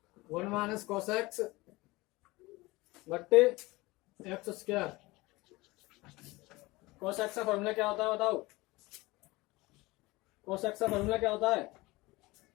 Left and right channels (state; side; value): quieter; right; 21.7 dB